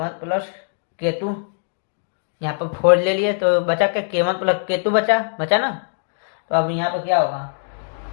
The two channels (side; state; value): right; silent; digital silence